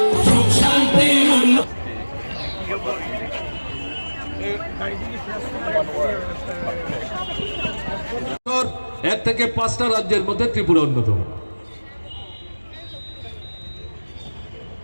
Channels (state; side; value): inverted; both; correlation -1.00